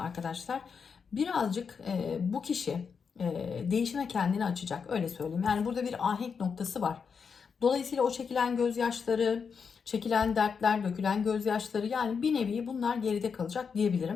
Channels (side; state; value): right; quieter; 6.0 dB